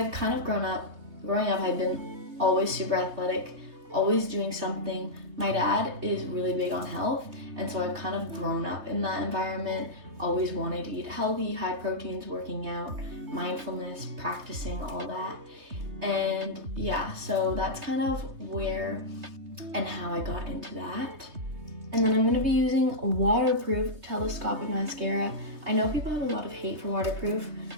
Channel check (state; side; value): late; left; 3.3 ms